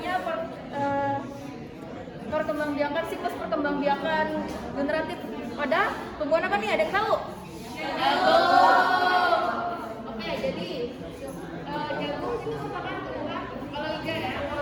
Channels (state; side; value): identical; both; correlation 1.00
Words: perkembangbiakan, siklus perkembangbiakan generatif pada tumbuhan apa nih? Ada yang tahu? Oke, jadi jagung itu merupakan tumbuhan kalau iga ya,